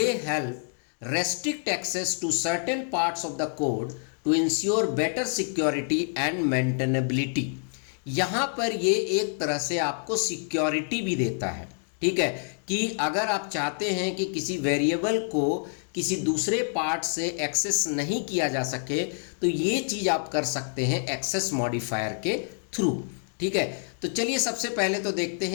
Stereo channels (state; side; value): silent; right; 60 dB below the other